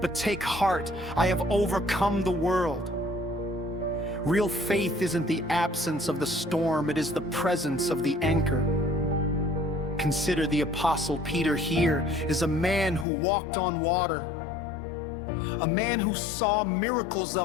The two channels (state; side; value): drops out; right; at 13.1 s